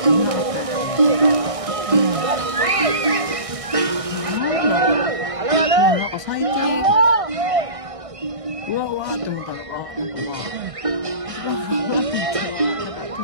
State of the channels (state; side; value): late; left; 1.6 ms